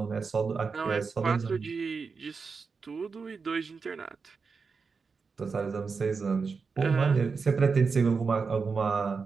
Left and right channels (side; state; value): left; quieter; 5.0 dB